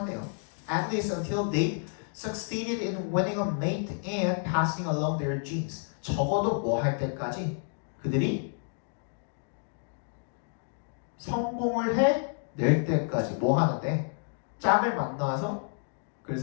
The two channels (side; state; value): right; silent; 58 dB below the other